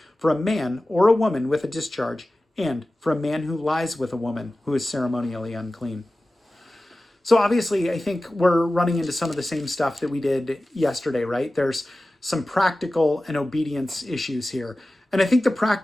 for a man or a woman with a discharge, and for a man who lies with a woman who is ceremonially unclean. So obviously, I think we're running into some of the same stuff that we did yesterday, right? There's some practical and obedience issues here. And I think the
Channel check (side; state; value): both; normal; correlation 0.96